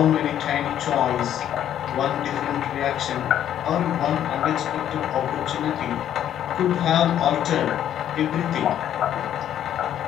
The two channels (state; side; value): quieter; right; 10.7 dB